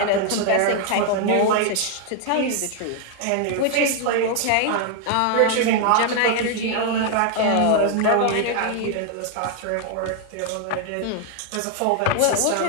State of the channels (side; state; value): both; different; correlation 0.00